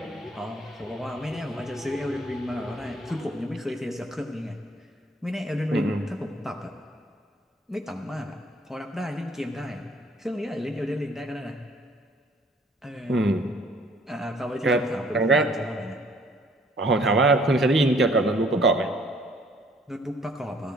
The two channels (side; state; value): both; normal; correlation 0.60